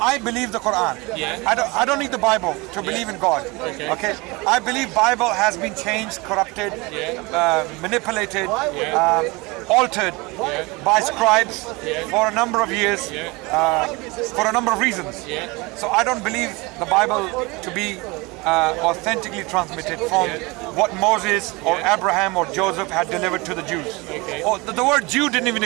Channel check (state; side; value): quieter; left; 25.0 dB